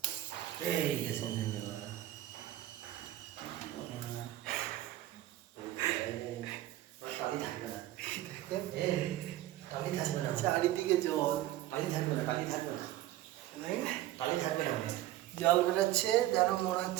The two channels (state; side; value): quieter; left; 14.6 dB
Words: এই গেছে টালি থাকবে না, টালি থাকবে না, চারিদিকে জল। টালি থাকবে না, টালি থাকবে না, টালি থাকবে না। জল বেরোচ্ছে যেন মনে